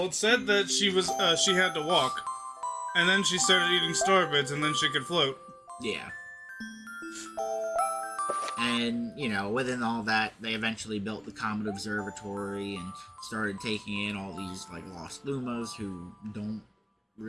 it said that she had to walk, and then she started eating star bits, and then she could float. Yeah. And, within all that, they eventually built the Comet Observatory and started taking in all these, like, lost Lumas who don't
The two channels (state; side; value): identical; both; correlation 1.00